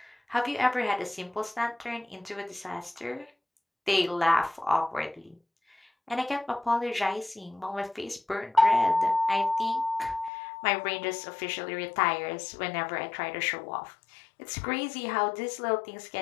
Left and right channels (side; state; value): right; drops out; at 10.3 s